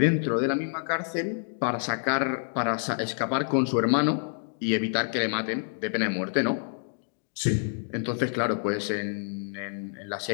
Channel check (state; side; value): silent; right; 60 dB below the other